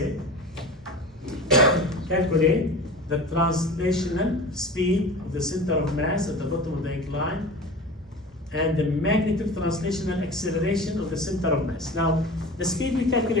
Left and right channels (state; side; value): normal; both; correlation 0.34